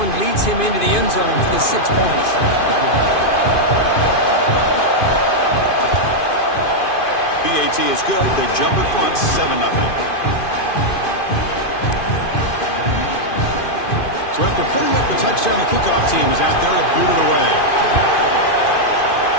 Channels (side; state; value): right; late; 2.5 ms